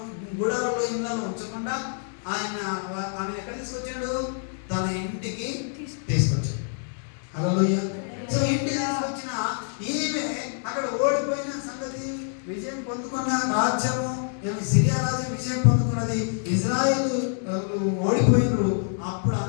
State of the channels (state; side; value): silent; right; 61 dB below the other